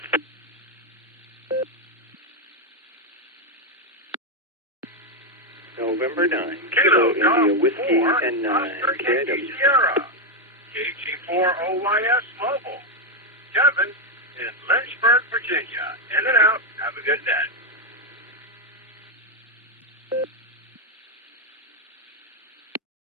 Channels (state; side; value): normal; both; correlation 0.03